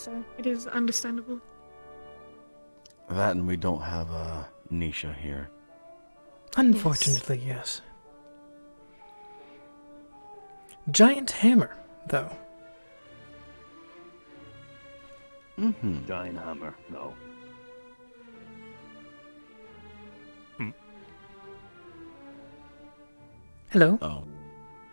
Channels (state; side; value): inverted; both; correlation -1.00